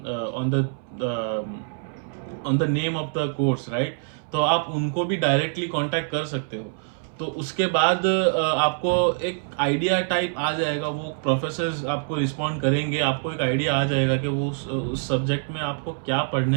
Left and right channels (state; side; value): silent; left; 62 dB below the other